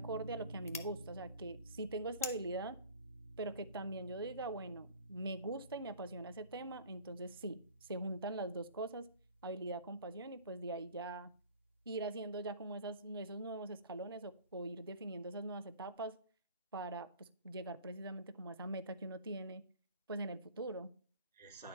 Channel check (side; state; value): both; inverted; correlation -0.46